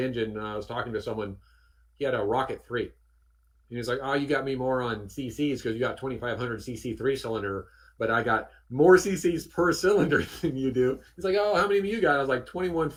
I was talking to someone. He had a Rocket 3, and he's like, "Oh, you got me more on CCs because you got 2500 CC 3 cylinder, but I got more CCs per cylinder than you do." He's like, "Oh, how many do you got?" I was like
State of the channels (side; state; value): both; identical; correlation 1.00